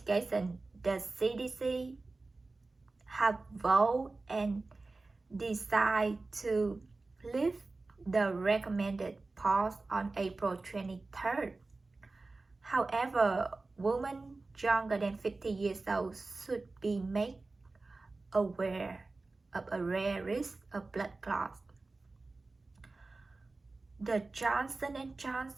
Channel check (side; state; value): left; quieter; 3.5 dB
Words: have voted and decided to lift the recommended pause on April 23rd. However, women younger than 50 years old should be made aware of a rare risk of blood clots. The Johnson &